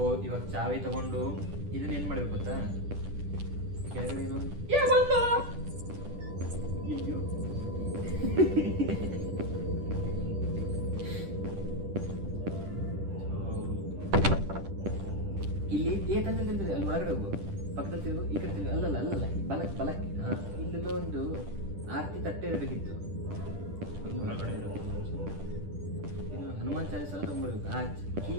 ಇವಾಗ ಚಾವಿ ತಗೊಂಡು ಇದನ್ನ ಏನು ಮಾಡ್ಬೇಕು ಗೊತ್ತಾ? ಕೆಳಗಡೆ ಏನು ಅಯ್ಯೋ ಇಲ್ಲಿ ತಂದಿರ್ತದೆ. ಅಲ್ಲಿ ಒಳಗಡೆ ಹೋಗು, ಪಕ್ಕದಲ್ಲಿ ತಿರುಗು, ಈ ಕಡೆ ತಿರುಗು. ಅಲ್ಲಲ್ಲ ಬಲಕ್ಕೆ ಇಲ್ಲೆಲ್ಲೋ ಒಂದು ಆರತಿ ತಟ್ಟೆ ಇರಬೇಕಿತ್ತು. ಹನುಮಾನ್ ಚಾಲಿಸ ತಗೊಂಡ್ಬರ್ಬೇಕು. ಆ ಕೀ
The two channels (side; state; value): left; late; 10 ms